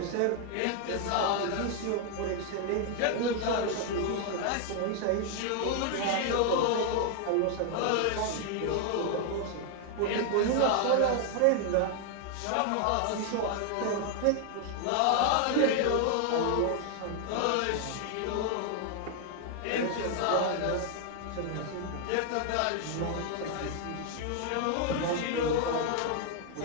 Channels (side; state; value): both; different; correlation 0.00